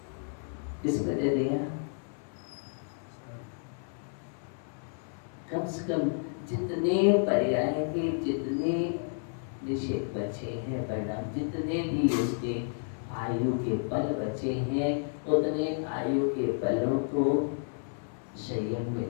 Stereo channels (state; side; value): silent; right; 57 dB below the other